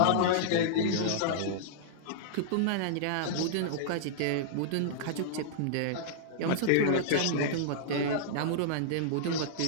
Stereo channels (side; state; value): both; different; correlation -0.02